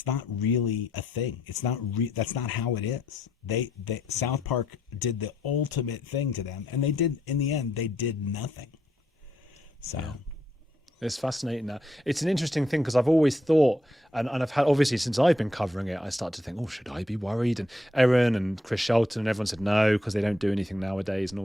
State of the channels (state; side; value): normal; both; correlation 0.75